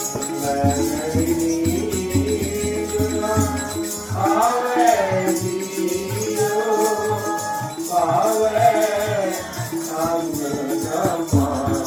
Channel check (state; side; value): identical; both; correlation 1.00